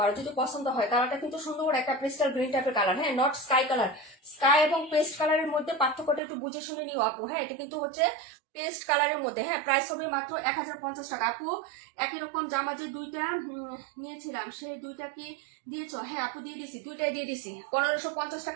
যদি পছন্দ হয়। কালারটা কিন্তু সুন্দর একটা ক্রিস্টাল গ্রিন টাইপের কালার। হ্যাঁ, নট স্কাই কালার। স্কাই এবং পেস্ট কালারের মধ্যে পার্থক্যটা একটু বুঝে শুনে নিও আপু। হ্যাঁ, এটা কিন্তু হচ্ছে পেস্ট কালারের মধ্যে। হ্যাঁ, প্রাইস হবে মাত্র 1050 টাকা আপু। একই রকম জামা যে দুইটা নিয়েছিলাম সেই দুইটা কি দিয়েছো? হ্যাঁ আপু দিয়ে দিছি, দুইটাই দিয়ে দিছি। 1550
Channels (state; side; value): drops out; left; at 6.2 s